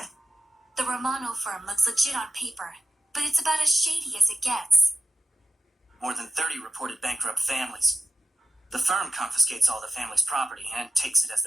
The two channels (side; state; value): both; normal; correlation 0.94